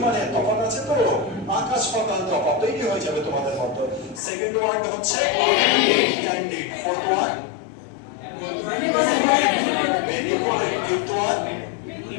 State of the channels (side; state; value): right; drops out; at 4.2 s